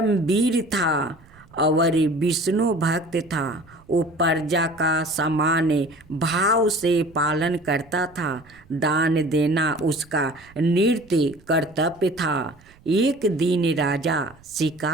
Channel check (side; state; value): right; noise; rumble, 27 dB below the sound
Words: था और विष्णु भक्त था। वो प्रजा का समान भाव से पालन करता था। दान देना उसका नित्य कर्तव्य था। एक दिन राजा